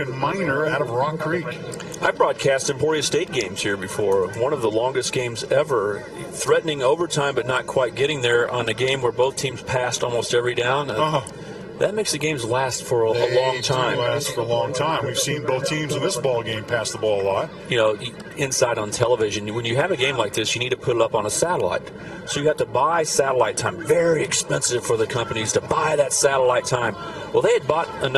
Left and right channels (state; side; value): identical; both; correlation 1.00